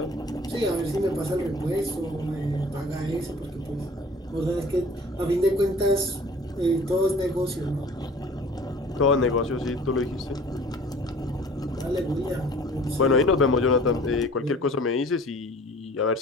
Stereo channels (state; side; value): normal; both; correlation 0.48